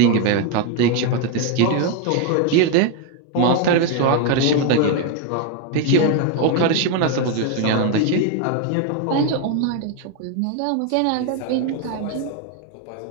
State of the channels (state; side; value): different; both; correlation 0.01